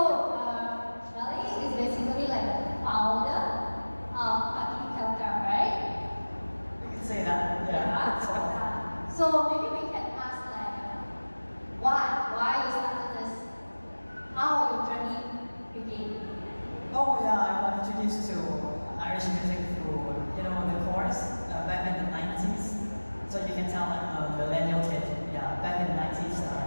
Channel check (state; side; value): inverted; both; correlation -1.00